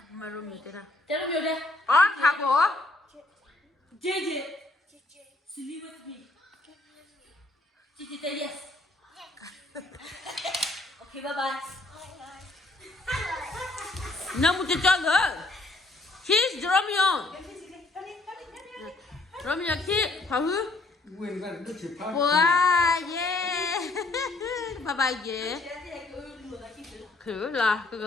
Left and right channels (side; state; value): right; quieter; 3.2 dB